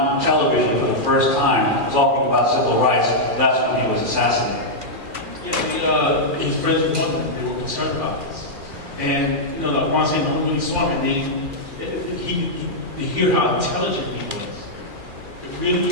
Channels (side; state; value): left; late; 2.4 ms